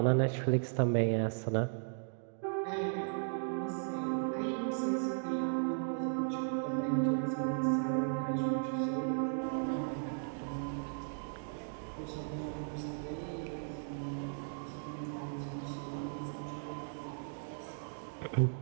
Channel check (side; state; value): left; silent; digital silence